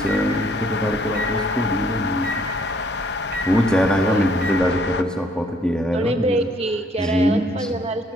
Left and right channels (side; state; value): both; normal; correlation 0.64